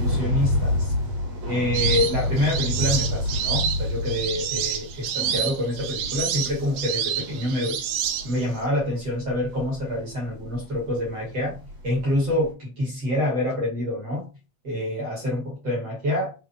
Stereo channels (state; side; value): late; left; 8.3 ms